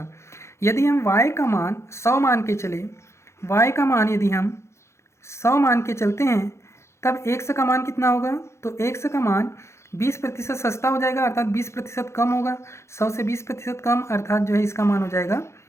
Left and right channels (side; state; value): right; late; 0.13 ms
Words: यदि हम वाई का मान 100 मान के चले, वाई का मान यदि हम 100 मान के चलते हैं, तब एक्स का मान कितना होगा? तो एक्स का मान 20% सस्ता हो जाएगा, अर्थात 20% कम होगा। 100 से 20% कम, अर्थात जो है इसका मान हो जाएगा